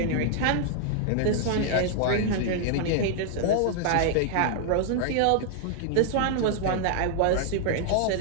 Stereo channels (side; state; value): both; different; correlation -0.01